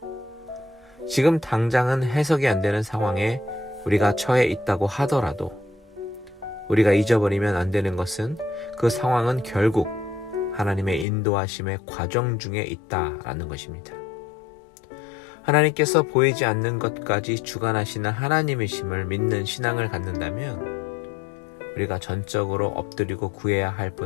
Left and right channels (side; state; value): right; drops out; at 11.1 s